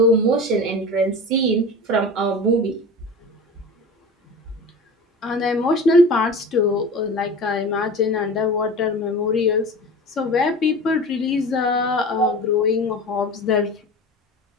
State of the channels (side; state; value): both; normal; correlation 0.34